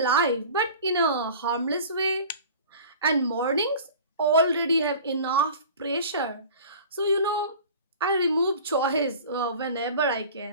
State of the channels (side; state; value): both; inverted; correlation -0.41